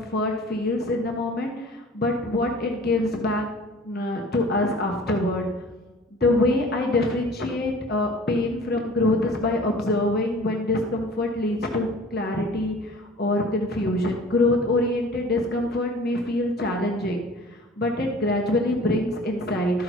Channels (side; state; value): both; normal; correlation 0.46